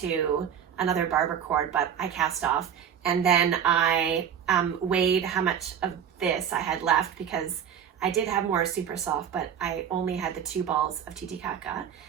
another barber cord, but I cast off. And then I weighed how much of this I had left because I did have more Super Soft, but I only had the 2 balls of Titicaca.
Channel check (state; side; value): quieter; left; 8.6 dB